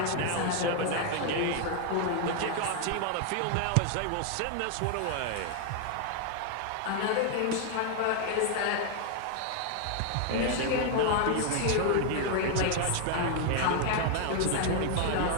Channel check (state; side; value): different; both; correlation 0.00